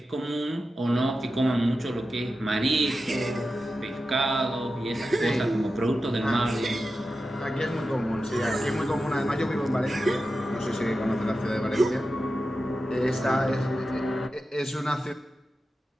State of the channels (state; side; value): normal; both; correlation 0.92